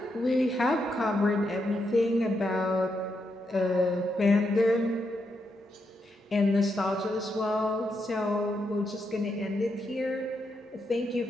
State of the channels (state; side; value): normal; both; correlation 0.82